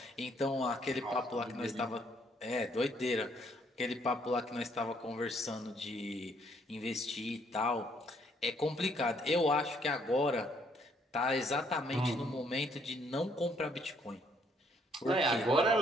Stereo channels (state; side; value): normal; both; correlation 0.67